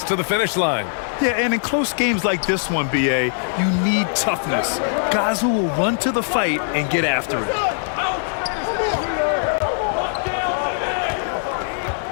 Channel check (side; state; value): right; silent; 65 dB below the other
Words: to the finish line. Yeah, and in close games like this one, BA, you need toughness. Guys who will run to the fight and get after it.